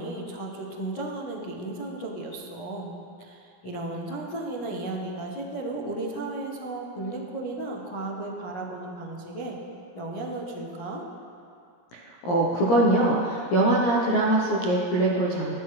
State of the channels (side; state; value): right; late; 17 ms